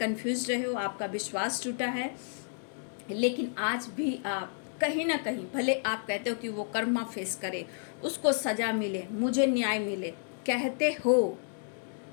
रहे हो, आपका विश्वास टूटा है, लेकिन आज भी आप कहीं ना कहीं, भले आप कहते हो कि वो कर्मा फेस करे, उसको सजा मिले, मुझे न्याय मिले, कहते हो,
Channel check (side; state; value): right; silent; digital silence